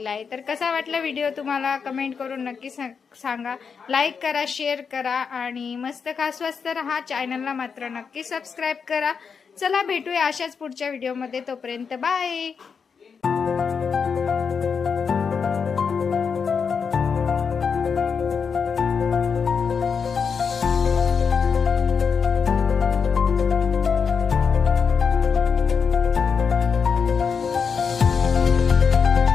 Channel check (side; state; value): right; quieter; 6.0 dB